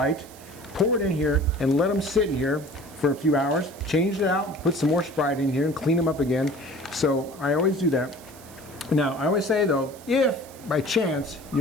pour it in here, and let them sit in here for a few hours. Change it out, put some more Sprite in here, and clean them up again. So I always do that. Now, I always say though, if by chance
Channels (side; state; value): right; noise; hiss, 21 dB below the sound